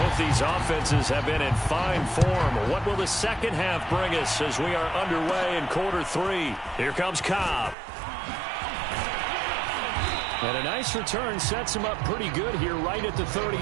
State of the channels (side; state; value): left; drops out; at 7.8 s